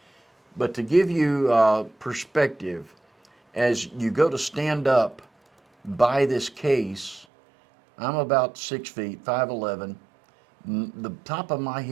But to give you perspective, as you go to stand up by this case, I'm about 6 feet, 5'11". The top of my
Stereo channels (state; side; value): drops out; left; at 7.2 s